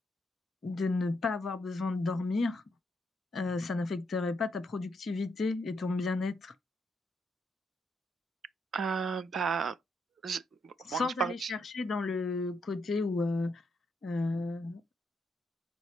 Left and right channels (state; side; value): normal; both; correlation 0.78